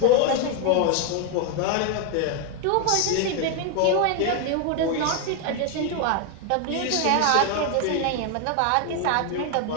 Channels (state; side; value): different; both; correlation 0.01